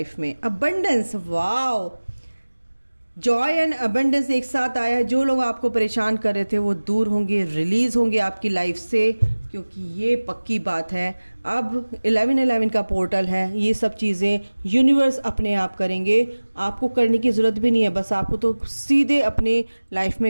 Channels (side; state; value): both; inverted; correlation -1.00